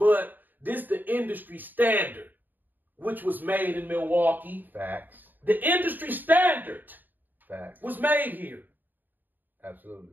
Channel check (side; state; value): left; late; 0.089 ms